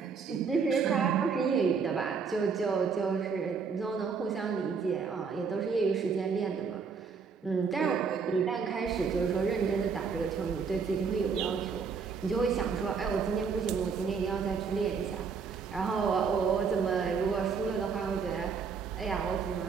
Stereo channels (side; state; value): left; quieter; 5.7 dB